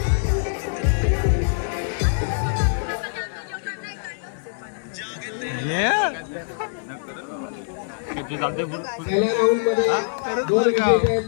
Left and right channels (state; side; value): silent; right; digital silence